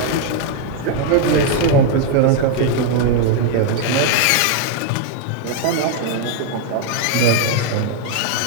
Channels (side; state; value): both; different; correlation 0.01